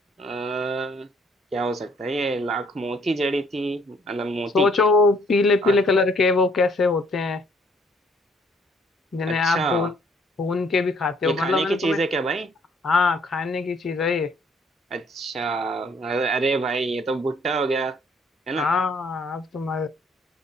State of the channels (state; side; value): normal; both; correlation 0.64